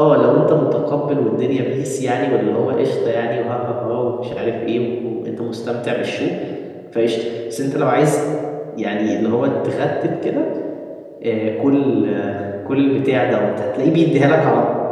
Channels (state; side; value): identical; both; correlation 1.00